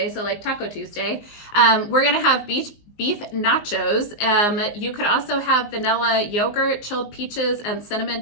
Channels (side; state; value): right; late; 19 ms